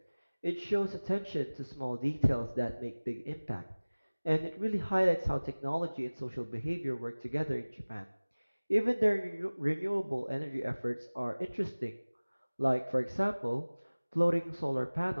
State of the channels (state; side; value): inverted; both; correlation -1.00